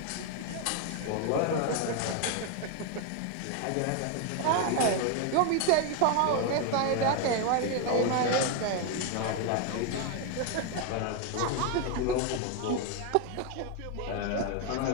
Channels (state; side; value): different; both; correlation 0.01